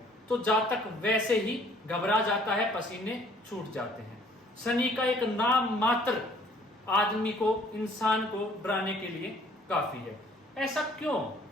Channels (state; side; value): normal; both; correlation 0.58